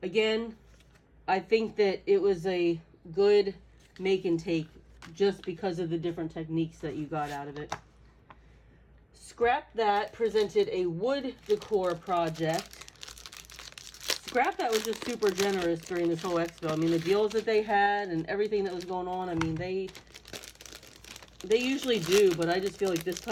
again, I think that it was a good make and take just because of the different techniques that you got out of it. Scrap That presented a wood decor project. Scrap That was just super generous during this whole expo. I mean, the deals that they had and everything that was going on, I mean, they usually do, but I just feel like this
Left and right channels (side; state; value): both; identical; correlation 1.00